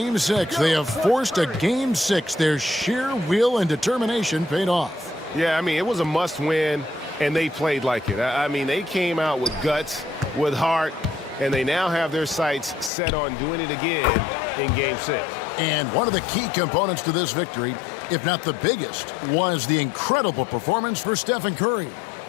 6. They have forced a Game 6. Their sheer will and determination paid off. Yeah, I mean, it was a must-win, and they played like it. I mean, they came out with guts, with heart, and they now have their sights set on doing it again in Game 6. And one of the key components to this victory, if not the biggest, was the incredible performance for Stephen Curry.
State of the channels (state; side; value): drops out; right; at 12.9 s